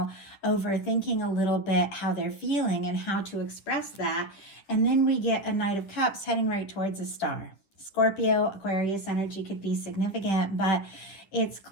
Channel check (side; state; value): right; late; 10 ms